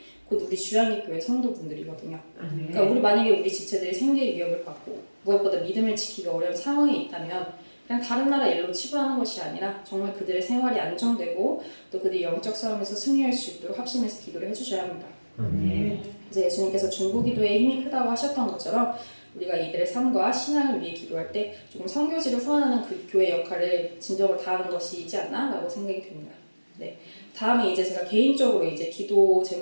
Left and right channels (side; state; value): both; inverted; correlation -1.00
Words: 곧 우리 주양기 교회 성도분들이거든요. 그러니까 우리 만약에 우리 지체들이 생계의 위협을 받고 무엇보다 믿음을 지키기 어려운 상황에 있다면 그냥 다른 나라 일로 치부하는 것이 아니라 정말 그들의 생활이 안정되고 또 그들이 영적 싸움에서 승리할 수 있도록 합심해서 기도를 해주셔야 합니다. 그래서 예수님께서 중보기도에 힘이 크다고 하셨던 것처럼 우리가 이들의 삶과 신앙을 위해 기도할 때 조금 선교지를 후원하는 그 교회 역할을 진정으로 다하는 것이지 않나라고 생각이 듭니다. 네. 다음에 이제 제가 개인적으로 이제 기도